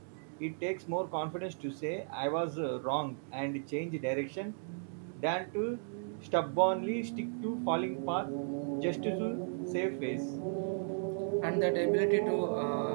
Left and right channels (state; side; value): silent; left; digital silence